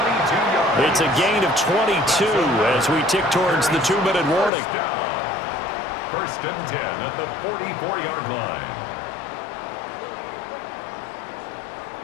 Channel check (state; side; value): drops out; right; at 4.5 s